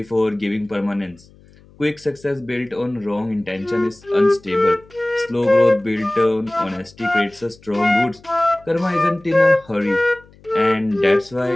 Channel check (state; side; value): noise; left; hum, 27 dB below the sound